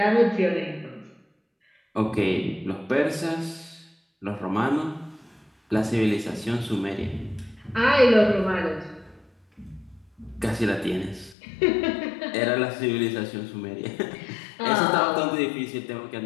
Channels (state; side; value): drops out; right; at 11.4 s